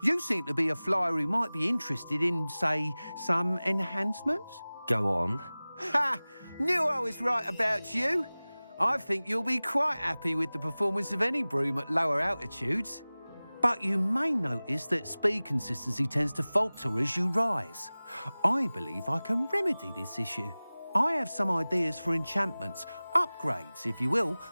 You seem to be a flyer who might be interested in, say, some enhancements? Go on. Ha! Knew I was right about you. I think you'll be quite happy with the performance of any broom at lower altitudes. But you may notice that speed consistency tends to falter as you rise. I believe I can remedy this issue. I have some ideas for enchantments, upgrades, if you will,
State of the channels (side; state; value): both; inverted; correlation -0.99